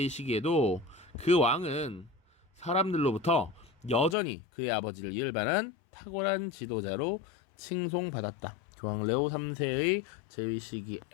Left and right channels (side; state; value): right; drops out; at 4.2 s